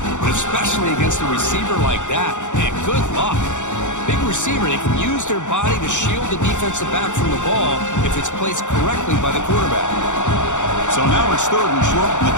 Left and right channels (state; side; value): late; right; 0.85 ms